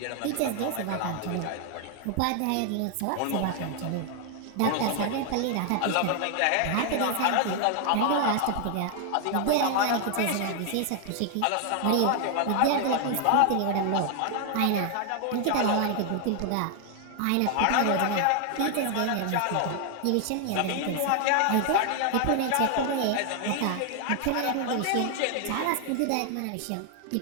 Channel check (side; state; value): both; different; correlation 0.00